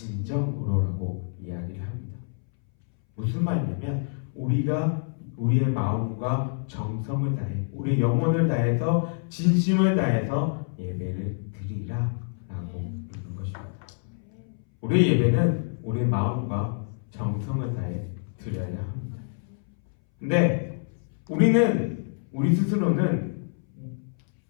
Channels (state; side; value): silent; right; 60 dB below the other